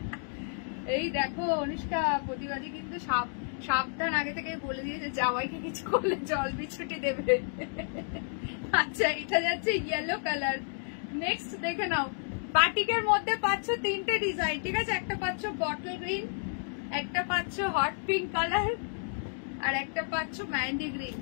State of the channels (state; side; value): silent; right; 57 dB below the other